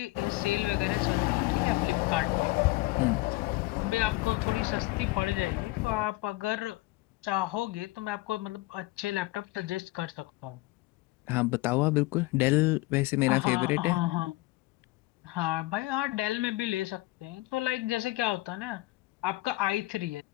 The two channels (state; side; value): quieter; right; 20.3 dB